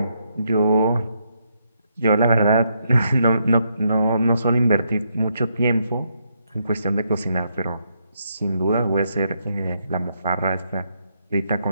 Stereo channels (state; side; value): inverted; both; correlation -0.77